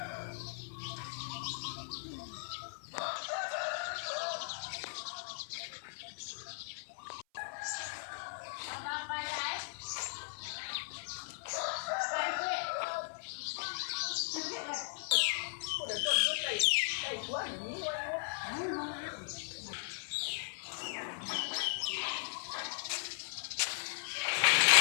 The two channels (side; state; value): right; silent; 53 dB below the other